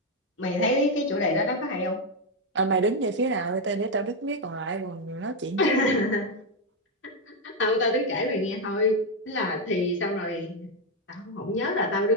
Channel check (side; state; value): both; normal; correlation 0.04